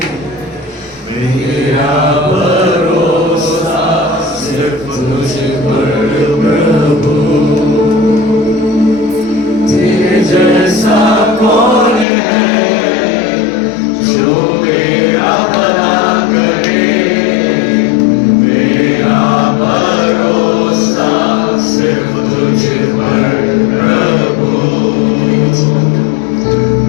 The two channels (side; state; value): right; drops out; at 12.1 s